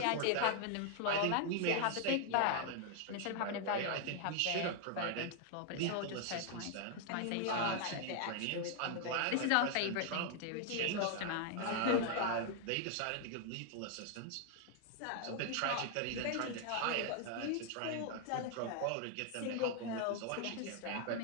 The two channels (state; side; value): different; both; correlation 0.00